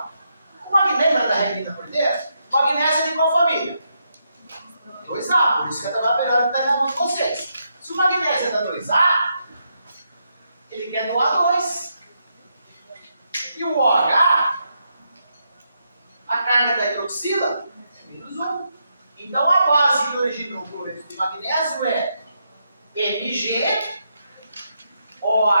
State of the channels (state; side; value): inverted; both; correlation -0.81